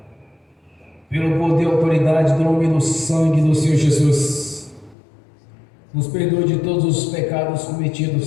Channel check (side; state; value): right; drops out; at 5.0 s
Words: pelo poder e autoridade do nome e do sangue do Senhor Jesus, nos perdoe de todos os pecados